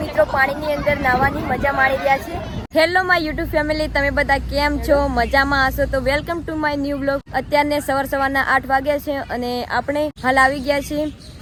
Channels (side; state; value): both; identical; correlation 1.00